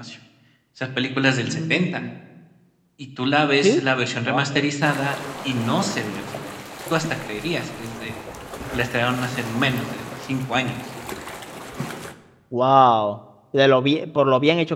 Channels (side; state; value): both; identical; correlation 1.00